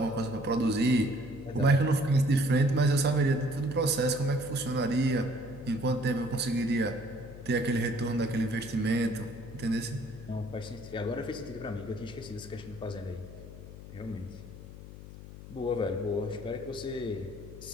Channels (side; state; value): left; noise; hum, 14 dB below the sound